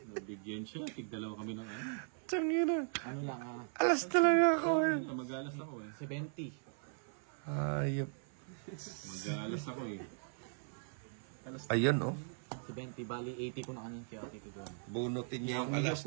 Nabigyan siya. Tig-dalawa kami ng ano. Tangina. Ano lang, Alas talaga ako eh. Mag-alas ako eh. 70. Ayop. Mag-alas ako eh. Ayun oh. 70, bali 80 ko na kanina kaya titigan. Bunutin niya yung alas,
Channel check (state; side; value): silent; left; 52 dB below the other